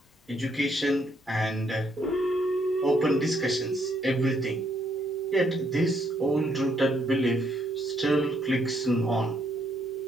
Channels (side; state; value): both; normal; correlation 0.72